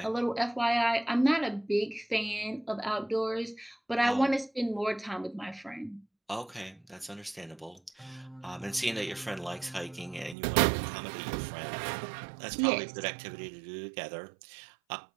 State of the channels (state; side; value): drops out; left; at 10.4 s